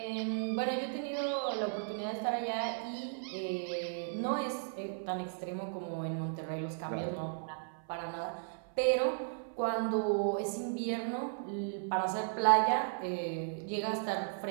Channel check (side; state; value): left; silent; 54 dB below the other